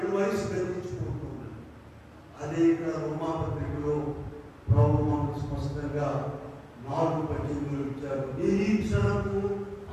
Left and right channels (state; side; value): identical; both; correlation 1.00